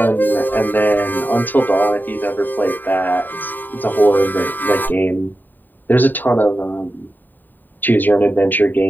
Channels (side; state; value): right; late; 0.090 ms